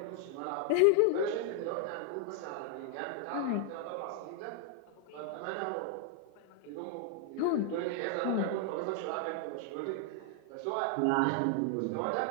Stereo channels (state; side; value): different; both; correlation 0.00